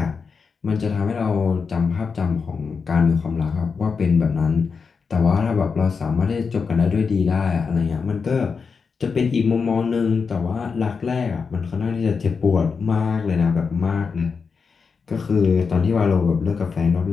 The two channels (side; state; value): right; quieter; 5.4 dB